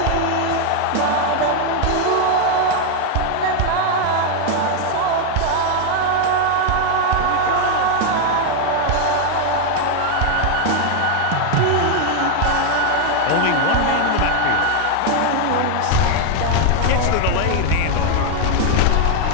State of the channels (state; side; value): different; both; correlation 0.00